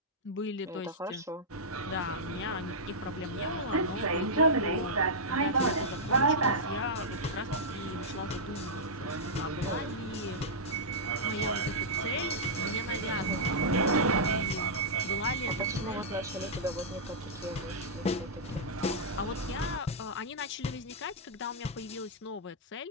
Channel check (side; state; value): both; normal; correlation -0.10